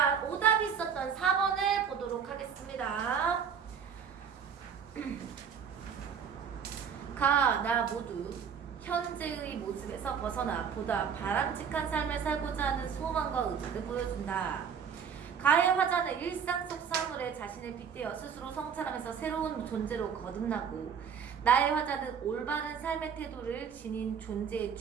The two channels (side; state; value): left; quieter; 7.1 dB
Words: 오답이 있었던 4번을 보도록 하겠습니다. 가, 나 모두 현재의 모습에서 벗어나 보다 바람직한 삶을 살고자 하는 소망과 의지를 보여준다. 가의 화자는 일상 속 사물에 자신을 빗대어 스스로 성찰하면서 새로운 존재로 거듭나고, 나의 화자는 올바른 삶의 태도를 지닌 존재에